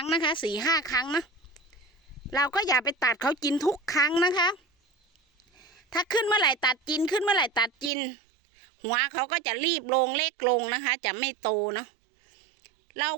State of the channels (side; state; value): left; drops out; at 7.9 s